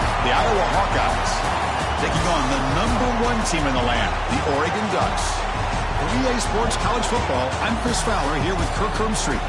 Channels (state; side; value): identical; both; correlation 1.00